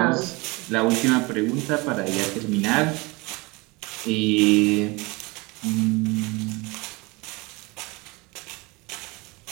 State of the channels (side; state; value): left; quieter; 25.4 dB